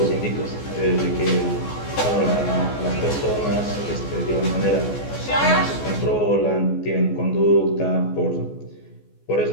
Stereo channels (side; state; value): right; late; 14 ms